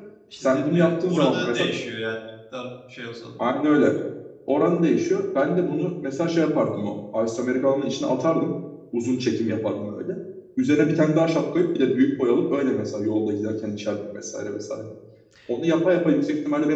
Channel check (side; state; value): both; identical; correlation 1.00